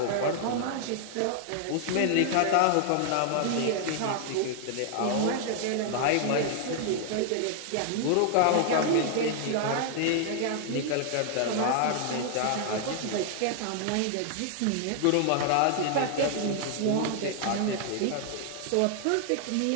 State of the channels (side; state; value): both; different; correlation 0.00